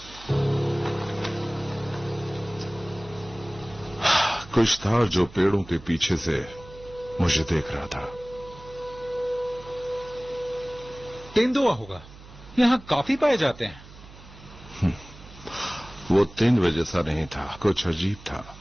कुछ था जो पेड़ों के पीछे से मुझे देख रहा था। तेंदुआ होगा, यहां काफी पाए जाते हैं। वो तेंदुए जैसा नहीं था, कुछ अजीब था,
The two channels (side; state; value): right; noise; hum, 19 dB below the sound